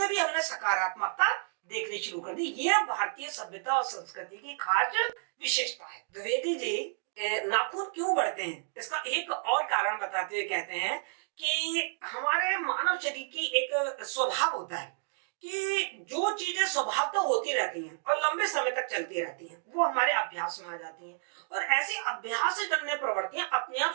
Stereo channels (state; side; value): silent; left; digital silence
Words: भी हमने सकारात्मकता देखनी शुरू कर दी। यह भारतीय सभ्यता और संस्कृति की खास विशेषता है। द्विवेदी जी नाखून क्यों बढ़ते हैं इसका एक और कारण बताते हुए कहते हैं कि हमारे मानव शरीर की एक स्वभाव होता है कि जो चीजें स्वभाव तो होती रहती हैं और लंबे समय तक चलती रहती हैं वो हमारे अभ्यास में आ जाती हैं, और ऐसी अभ्यास से जन्य प्रवृत्तियां अपने आप